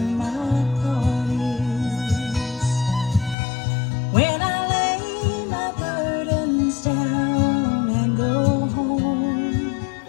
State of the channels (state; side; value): drops out; right; at 3.4 s